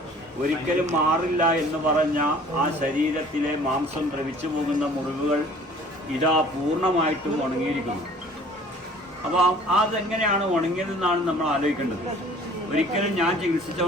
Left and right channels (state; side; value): normal; both; correlation 0.51